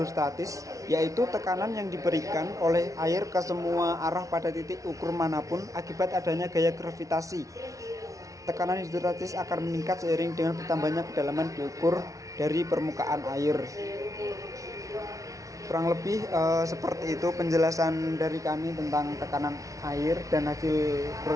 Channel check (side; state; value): left; late; 0.16 ms